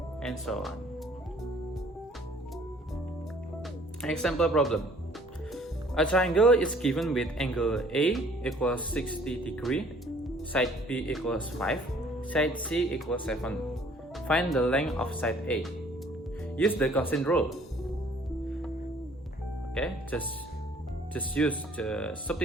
and so on. Example problem. A triangle is given with angle A equals 60 degree, side B equals 5, side C equals 7. Find the length of side A. Use the quotient rule. Okay, just use the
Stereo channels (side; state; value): both; normal; correlation 0.57